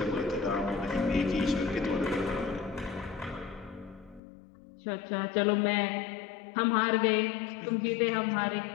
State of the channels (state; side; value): drops out; right; at 4.2 s